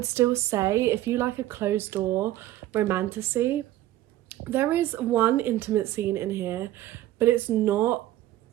still say if you like a closed door romantasy, there is one intimate scene in here, but it's not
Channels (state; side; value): quieter; left; 14.3 dB